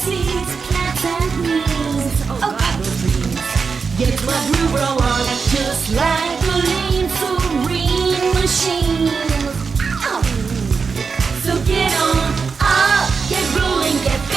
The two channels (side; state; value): left; quieter; 5.2 dB